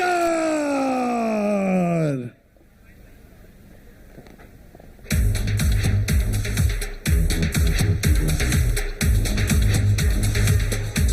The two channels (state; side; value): identical; both; correlation 1.00